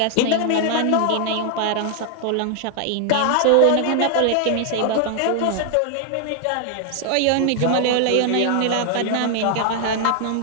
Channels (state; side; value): different; both; correlation 0.00